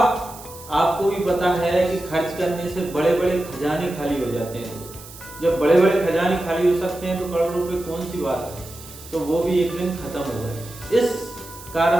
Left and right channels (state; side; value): noise; right; hiss, 17 dB below the sound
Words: आपको भी पता है कि खर्च करने से बड़े बड़े खजाने खाली हो जाते हैं। जब बड़े बड़े खजाने खाली हो सकते हैं तो करोड़ रुपए कौन सी बात है। तो वो भी एक दिन खत्म हो गए। इस